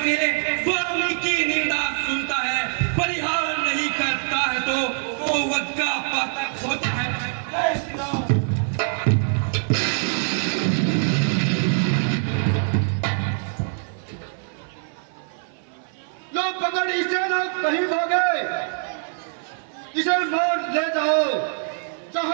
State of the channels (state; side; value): silent; left; 56 dB below the other